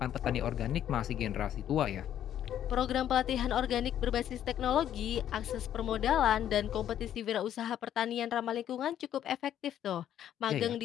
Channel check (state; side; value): quieter; right; 10.7 dB